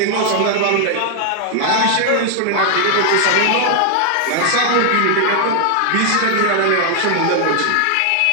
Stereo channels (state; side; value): different; both; correlation 0.00